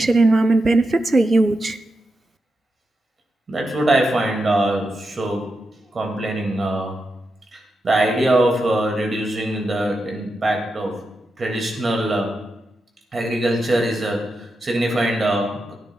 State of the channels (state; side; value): normal; both; correlation 0.88